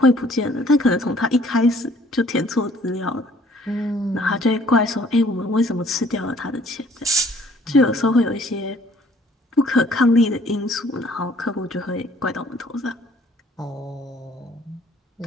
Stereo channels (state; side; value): normal; both; correlation 0.58